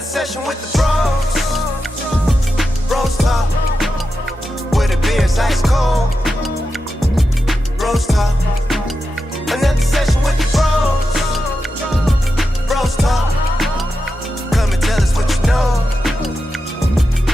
session with the Bros Talk, where the beer's ice cold. Bros Talk. Another session with the Bros Talk. Come and tell us what you know.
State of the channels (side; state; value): both; normal; correlation 0.89